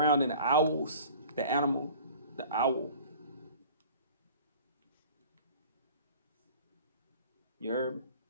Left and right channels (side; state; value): both; inverted; correlation -0.45